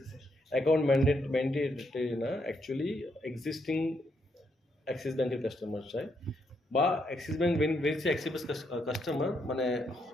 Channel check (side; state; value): both; normal; correlation 0.77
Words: অ্যাকাউন্ট ম্যান্ডেটরি না, অ্যাকচুয়ালি এক্সিস্টিং অ্যাক্সিস ব্যাংকের কাস্টমার চাই, বা অ্যাক্সিস ব্যাংক বেরিয়েছে অ্যাক্সিস কাস্টমার, মানে